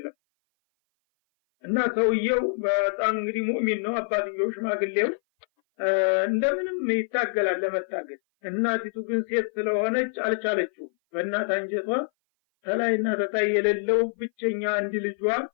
እና ሰውየው በጣም እንግዲህ ሙእሚን ነው። አባትየው ሽማግሌው እንደምንም ይታገላል ለመታገል። እናቲቱ ግን ሴት ስለሆነች አልቻለችው። በእናት አንጀቷ ተላይና ተታይ የሌለው ብቸኛ አንድ ልጇ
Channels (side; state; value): right; silent; 57 dB below the other